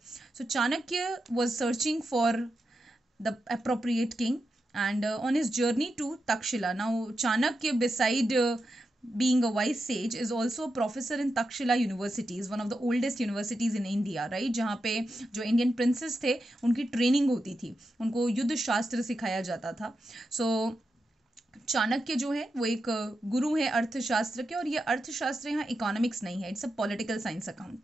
So Chanakya was searching for the appropriate king, and on his journey to Takshila. Now Chanakya, beside being a wise sage, is also a professor in Takshila University, is one of the oldest universities in India, right? जहाँ पे जो Indian princess थे उनकी training होती थी, उनको युद्ध शास्त्र सिखाया जाता था. सो चाणक्य जो है वो एक गुरु है अर्थशास्त्र के, और ये अर्थशास्त्र यहाँ इकोनॉमिक्स नहीं है, it's a political science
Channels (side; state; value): both; normal; correlation 0.88